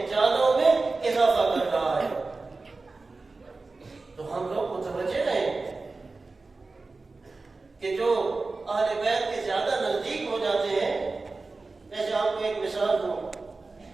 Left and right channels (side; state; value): left; quieter; 3.7 dB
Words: جالوں میں اضافہ کر رہا ہے۔ تو ہم لوگ متوجہ رہیں کہ جو اہل بیت کے زیادہ نزدیک ہو جاتے ہیں، جیسے آپ کو ایک مثال دوں